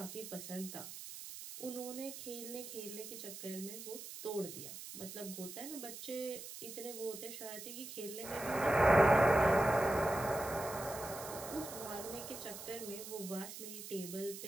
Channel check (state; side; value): noise; right; hiss, 10 dB below the sound